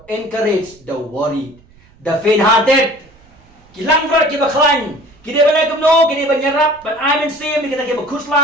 encourage the worried. The faint-hearted kilang berat kibaklan. Kini banyak kumno, kini banyarap, but I'm in same, kita kiba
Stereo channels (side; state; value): right; noise; rumble, 28 dB below the sound